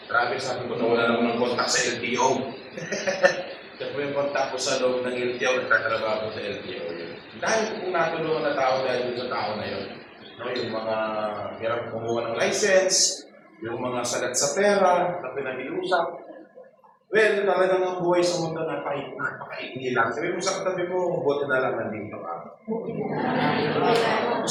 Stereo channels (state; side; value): identical; both; correlation 1.00